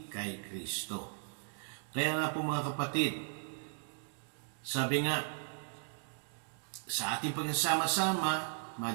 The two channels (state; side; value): silent; left; digital silence